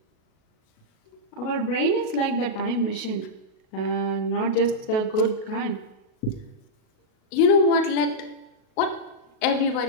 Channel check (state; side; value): late; right; 37 ms